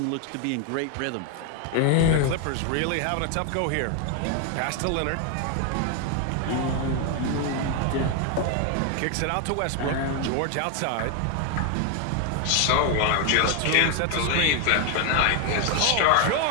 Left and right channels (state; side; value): different; both; correlation 0.01